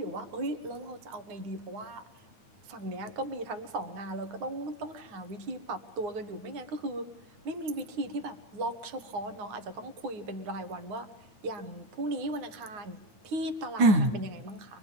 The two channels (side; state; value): left; late; 9.6 ms